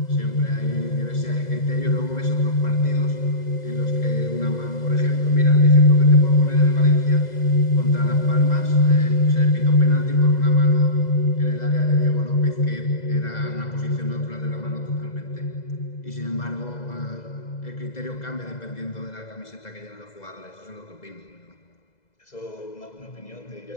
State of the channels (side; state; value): right; late; 2.0 ms